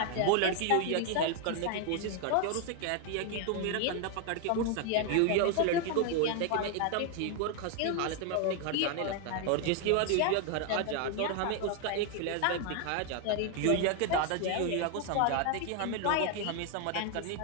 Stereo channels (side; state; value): both; different; correlation 0.00